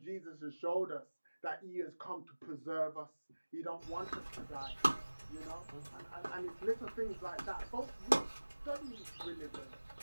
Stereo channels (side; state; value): both; inverted; correlation -1.00